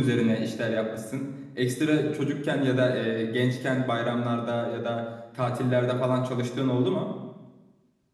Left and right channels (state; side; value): identical; both; correlation 1.00